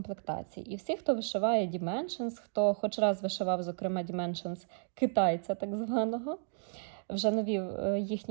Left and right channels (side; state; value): left; silent; 56 dB below the other